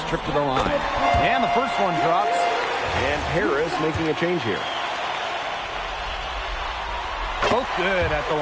trip to the line. And the first one drops. And Paris making a change here. Both good at the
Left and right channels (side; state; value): both; identical; correlation 1.00